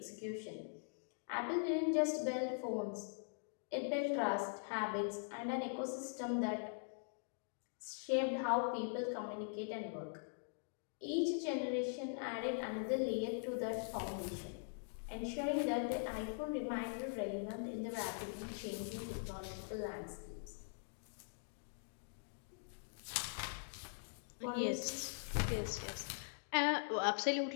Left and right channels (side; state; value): right; silent; digital silence